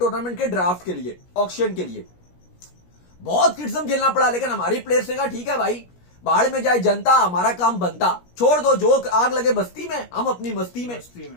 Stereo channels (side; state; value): right; late; 17 ms